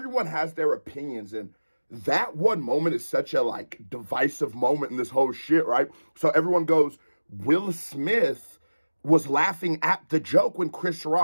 has their opinions, and that one moment is such a like divisive moment in this whole shit, right? So everyone goes, Will Smith was laughing at the joke when Chris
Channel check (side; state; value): both; inverted; correlation -1.00